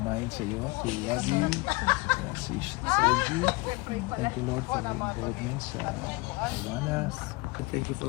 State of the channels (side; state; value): right; quieter; 24.7 dB